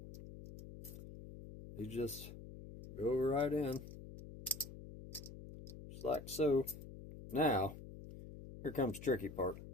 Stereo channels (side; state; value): left; noise; hum, 13 dB below the sound